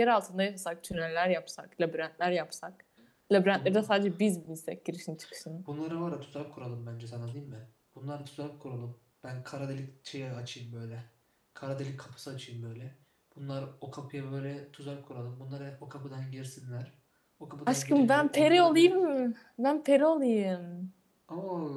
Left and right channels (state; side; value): identical; both; correlation 1.00